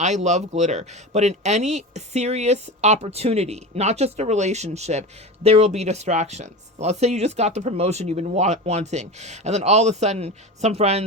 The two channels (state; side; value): normal; both; correlation 0.27